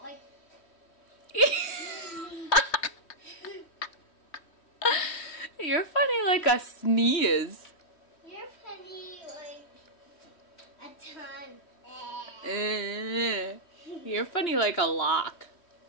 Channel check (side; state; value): right; late; 3.1 ms